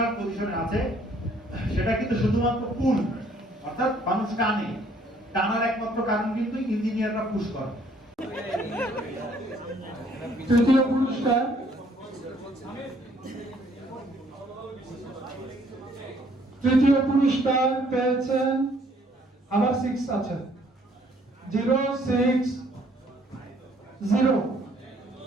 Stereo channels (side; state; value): both; normal; correlation 0.63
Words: পজিশনে আছে, সেটা কিন্তু শুধুমাত্র পুল, অর্থাৎ মানুষ টানার একমাত্র কারণ কিন্তু ইঞ্জিনিয়াররা পুশ করে। তৃতীয় পুরস্কার পেয়েছেন, আবার 6 আছে, 060